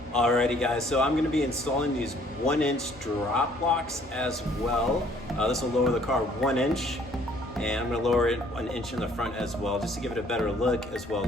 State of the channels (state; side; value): normal; both; correlation 0.60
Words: Alrighty guys, so I'm going to be installing these 1-inch drop locks as well. This will lower the car 1 inch, and I'm going to lower it 1 inch in the front as well, just to give it a better look as well